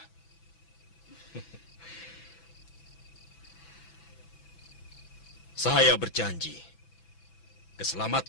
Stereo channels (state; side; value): late; right; 6.0 ms